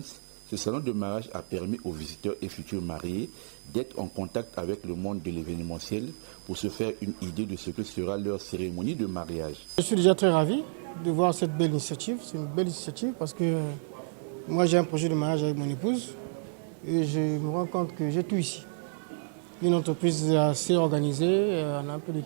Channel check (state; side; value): silent; left; digital silence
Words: ce salon de mariage a permis aux visiteurs et futurs mariés d'être en contact avec le monde de l'événementiel pour se faire une idée de ce que sera leur cérémonie de mariage. Je suis déjà très ravi de voir cette belle initiative. C'est une belle initiative parce que moi j'ai un projet de mariage avec mon épouse et je me rends compte que j'ai tout ici. Une entreprise assez organisée, on a un peu de